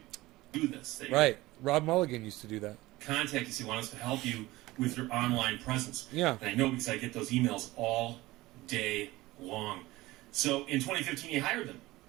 this. They right. Rob Mulligan used to do that. Contact us. He wants us to help you with your online presence. Yeah. And I know because I get those emails all day long. So in 2015, he hired them.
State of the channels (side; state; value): left; quieter; 19.0 dB